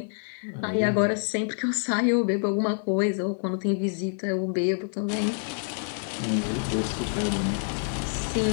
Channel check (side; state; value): right; silent; 60 dB below the other